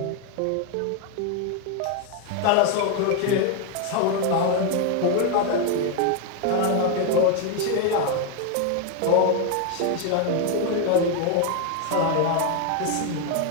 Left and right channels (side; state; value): both; different; correlation 0.01